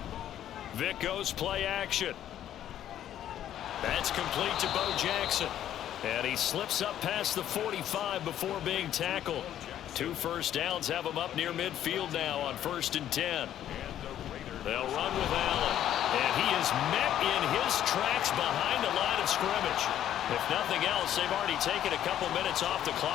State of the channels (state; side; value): quieter; right; 11.2 dB